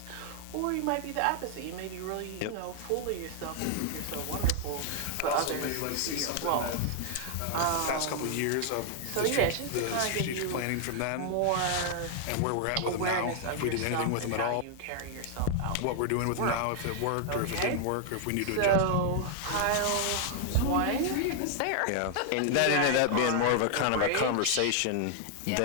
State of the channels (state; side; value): different; both; correlation 0.00